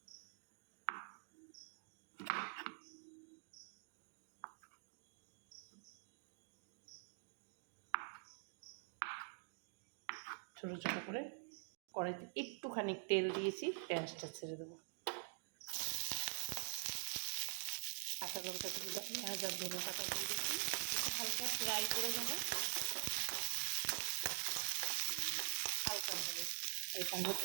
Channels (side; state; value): left; silent; digital silence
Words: ছোটো ছোটো করে কড়াইতে একটুখানি তেল দিয়েছি, পেঁয়াজটা ছেড়ে দেবো। কাঁচা লঙ্কা দিয়ে পেঁয়াজ আর ধনেপাতা দিয়ে দিয়েছি, হালকা ফ্রাই করে নেবো হালকাভাবে। এখানে